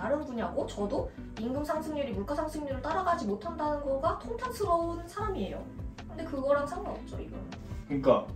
분야고 저도 임금 상승률이 물가 상승률을 따라가지 못한다는 거가 통탄스러운 사람이에요. 근데 그거랑 상관없죠, 이거는. 그러니까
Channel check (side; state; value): both; identical; correlation 1.00